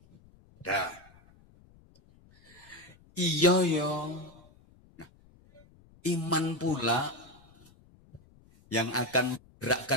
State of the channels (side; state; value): left; noise; rumble, 27 dB below the sound